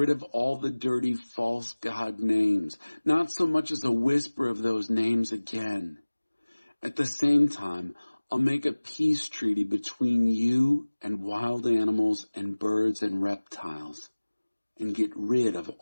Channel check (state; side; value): inverted; both; correlation -1.00